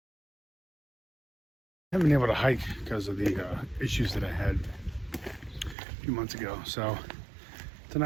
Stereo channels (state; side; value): drops out; left; at 5.8 s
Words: haven't been able to hike because of the issues that I had a few months ago. So it's a